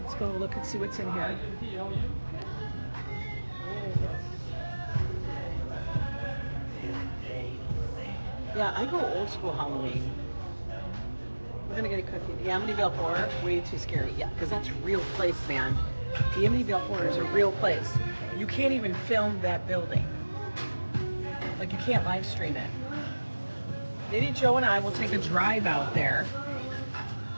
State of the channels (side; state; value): both; inverted; correlation -1.00